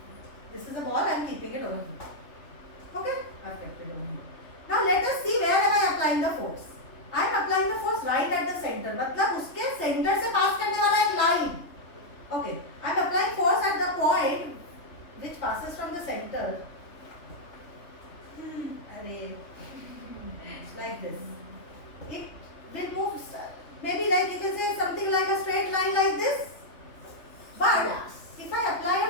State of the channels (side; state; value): right; late; 3.2 ms